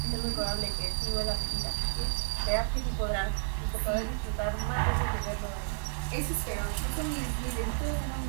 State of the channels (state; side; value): silent; left; digital silence